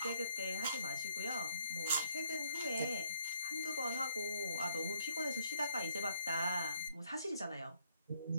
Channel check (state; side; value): inverted; both; correlation -0.69